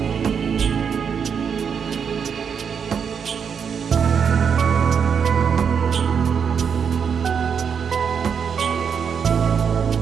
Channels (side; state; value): left; quieter; 6.9 dB